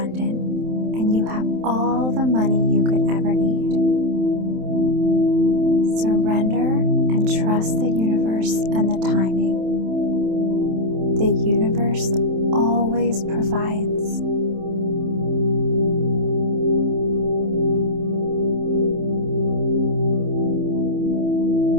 and you have all the money you could ever need. Surrender and trust the universe and the timing. The universe always provides.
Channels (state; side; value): late; left; 27 ms